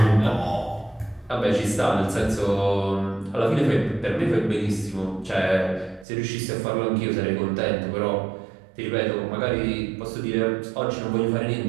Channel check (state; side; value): drops out; left; at 6.1 s